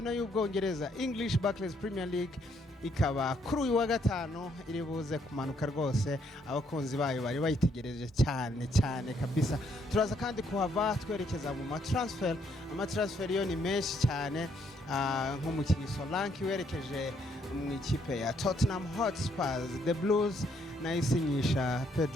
y'Ubwongereza English Barclays Premier League ikaba kuri uyu wa gatanu iri buze kumanuka rwose, abakunzi bayo bari bayitegereje cyane kabisa. Turaza kandi kuhava twerekeza mu amatransfer yo ni menshi cyane, nk'umukinnyi Solanke werekeje mu ikipe ya Tottenham Hotspur, The Blues nayisinyisha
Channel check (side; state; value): both; normal; correlation 0.71